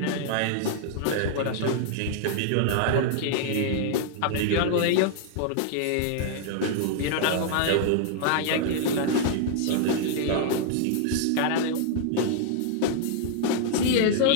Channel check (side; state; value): both; different; correlation -0.01